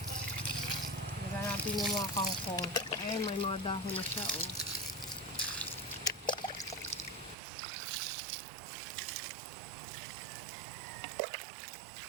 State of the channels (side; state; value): left; drops out; at 7.4 s